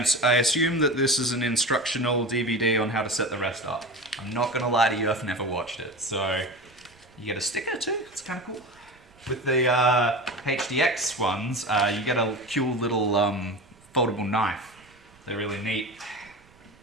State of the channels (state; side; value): noise; right; rumble, 29 dB below the sound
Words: assume that this is an instructional DVD on how to set the rest up. I'm not going to lie to you, I've never watched it. So, you get a sticker too, it's kind of cool. With the HDX ones, you get a cool little foldable knife. They're really neat.